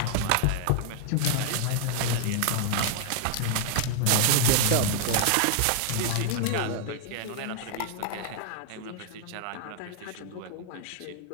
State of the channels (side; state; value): both; different; correlation 0.00